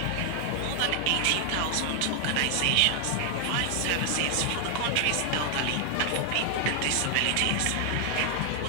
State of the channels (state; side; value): different; both; correlation 0.00